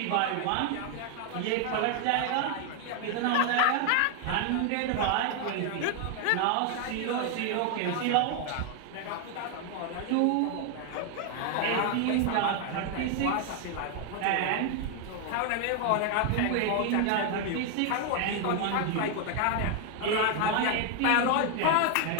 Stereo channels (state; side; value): different; both; correlation 0.00